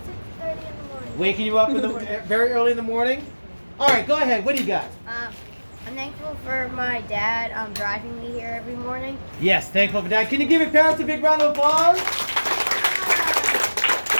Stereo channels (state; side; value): inverted; both; correlation -1.00